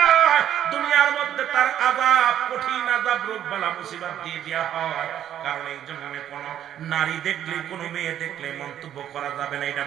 দুনিয়ার মধ্যে তার আযাব, কঠিন আযাব, রোগ বালা মুসিবত দিয়ে দেওয়া হয়। কারণ এই জন্য কোন নারী দেখলে, কোন মেয়ে দেখলে মন্তব্য করা যাবে না এটা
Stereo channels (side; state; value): left; quieter; 10.6 dB